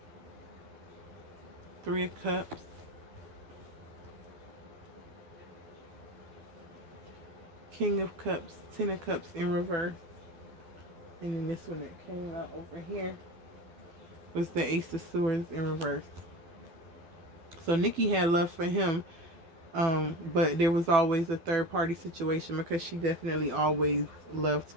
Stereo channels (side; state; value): left; late; 12 ms